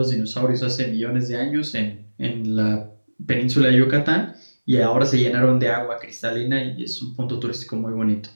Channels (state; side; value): inverted; both; correlation -1.00